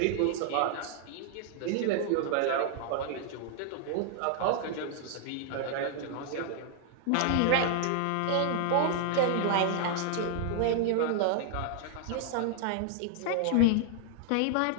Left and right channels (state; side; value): different; both; correlation 0.00